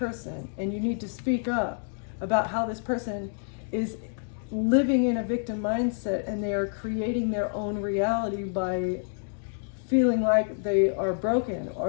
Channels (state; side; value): silent; right; digital silence